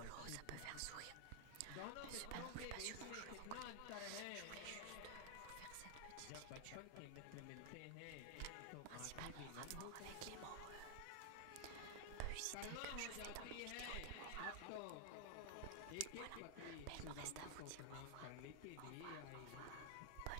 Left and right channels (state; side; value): different; both; correlation 0.00